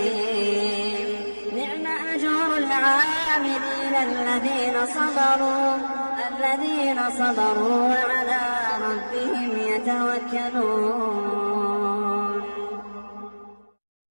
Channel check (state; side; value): inverted; both; correlation -1.00